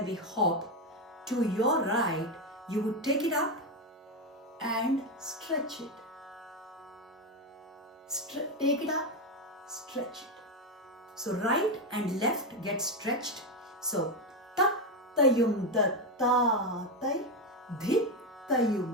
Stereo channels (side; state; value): both; normal; correlation 0.09